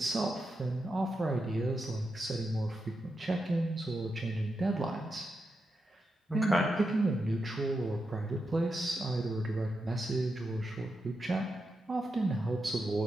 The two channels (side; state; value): both; normal; correlation 0.87